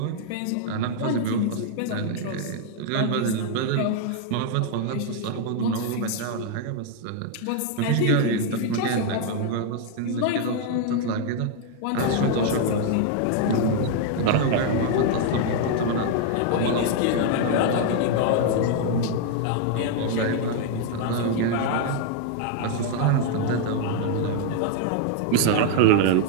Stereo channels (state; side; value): different; both; correlation 0.00